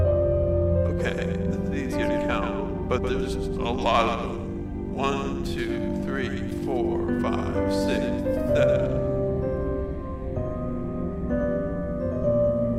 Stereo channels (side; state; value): both; identical; correlation 1.00